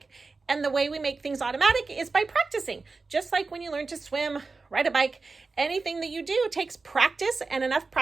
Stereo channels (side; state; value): left; quieter; 4.0 dB